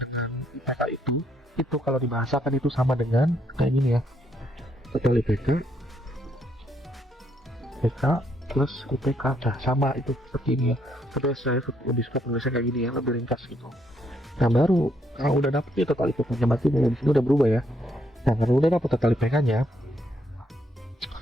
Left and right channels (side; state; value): both; normal; correlation 0.73